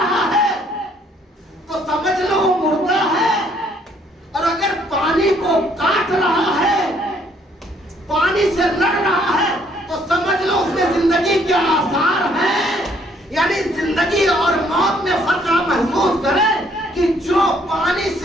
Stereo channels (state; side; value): normal; both; correlation 0.65